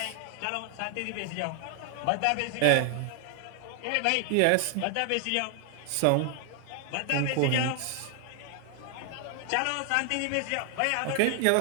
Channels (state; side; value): different; both; correlation 0.00